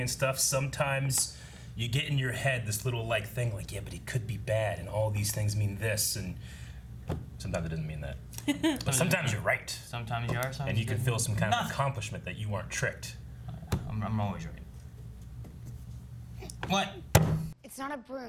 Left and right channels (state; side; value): identical; both; correlation 1.00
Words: and stuff, sometimes you get in your head this little like thing like, yeah, but he could be bad and all these things mean this, and sometimes it doesn't mean that. But sometimes you're right. Sometimes you are, sometimes And you can didn't. feel some kind of Nothing. accomplishment that you weren't tricked. I'm always right. What? It's not a